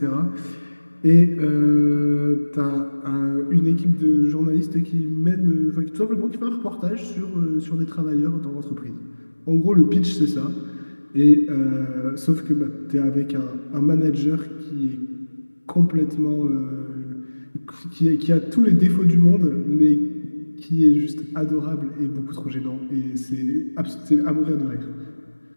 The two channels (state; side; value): inverted; both; correlation -1.00